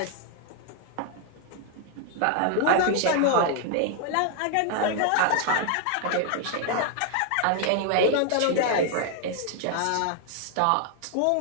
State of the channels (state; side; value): different; both; correlation 0.00